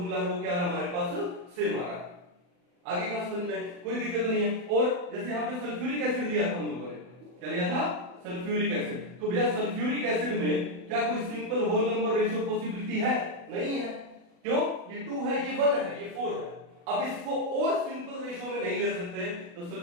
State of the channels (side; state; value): left; late; 40 ms